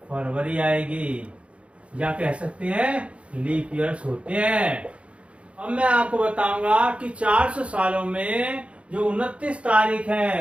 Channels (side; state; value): left; late; 0.061 ms